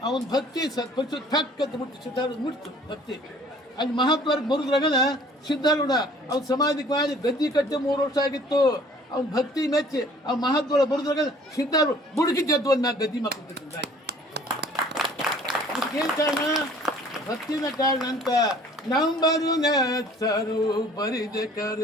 ಅವನ ಭಕ್ತಿ ಸತ್ಪರಿಸು ಥಕ್ಕಂತ ಮುಟ್ಟಿ ಸಿದ್ಧಾರೂಢ ಮುಟ್ತು ಭಕ್ತಿ ಅಲ್ಲಿ ಮಹಾತ್ಮರ ಮುರಿದ್ರಾಗನ ಸಿದ್ಧಾರೂಢ ಅವ್ನ ಸಮಾಧಿಗೆ ಮಾಡಿ ಗದ್ದಿ ಕಟ್ಟಿ 3 ವರ್ಷ ಆಗಿತ್ತು ಅವ್ನ ಭಕ್ತಿ ಮೆಚ್ಚಿ ಆ ಮಹಾತ್ಮರ ಮುರಿದ್ರಾಗ ಸಿದ್ಧಾರೂಢ ಬುಡುಕಿ ಜದ್ದು ಒಂದು ಗದ್ದಿ ಮಕ್ಕಳು ಏನ್ ಕಾರಣ ಭಕ್ತಿನ ಕಾರಣ ಅಂತ ನಂಬರು ನೆಚ್ಚರು ಬರಿದೆ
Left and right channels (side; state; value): both; normal; correlation 0.53